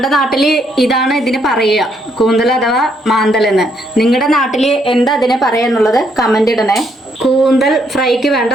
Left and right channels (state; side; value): normal; both; correlation 0.73